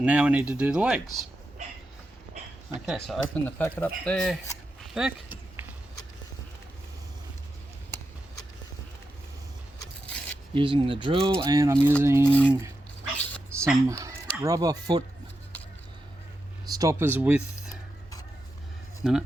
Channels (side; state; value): both; normal; correlation 0.88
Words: now we need to do the legs. Okay, so open the packet up there, Beck. Using the drill, and I'm using some rubber foot stoppers with, no,